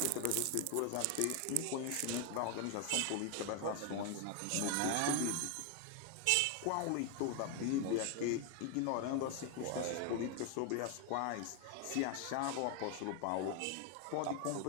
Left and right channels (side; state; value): both; different; correlation 0.01